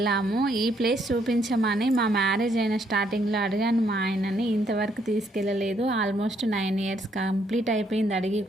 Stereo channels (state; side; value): normal; both; correlation 0.71